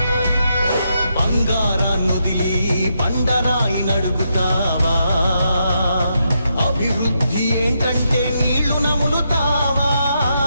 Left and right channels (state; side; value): inverted; both; correlation -0.81